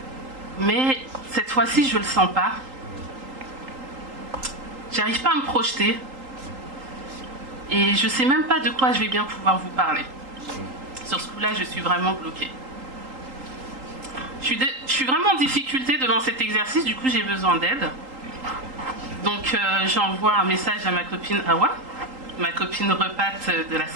Mais cette fois-ci, je ne le sens pas. J'arrive pas à me projeter. Et je ne sais même pas de quoi je vais bien pouvoir vous parler. Sur ce coup-là, je suis vraiment bloquée. Je suis vraiment en difficulté devant cet exercice, du coup j'ai besoin d'aide. Donc j'envoie un message à ma copine Awa, ma copine repate de la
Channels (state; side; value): late; left; 3.8 ms